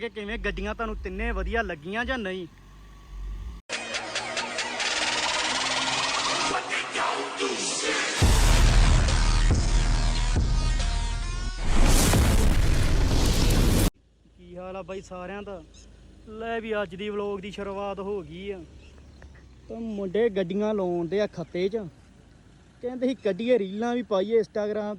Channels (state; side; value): identical; both; correlation 1.00